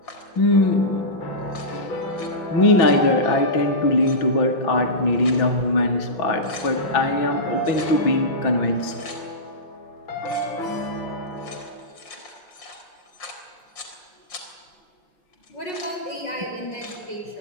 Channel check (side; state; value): right; late; 5.6 ms